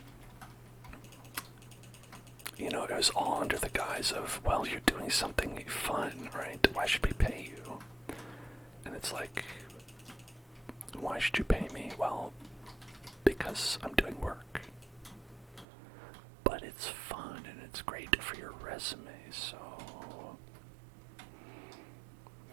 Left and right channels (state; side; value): drops out; left; at 15.7 s